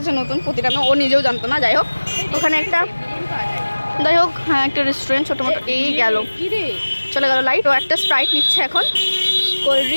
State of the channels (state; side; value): inverted; both; correlation -1.00